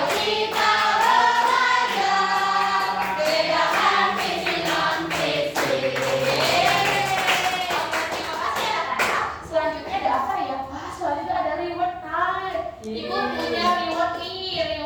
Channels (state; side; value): identical; both; correlation 1.00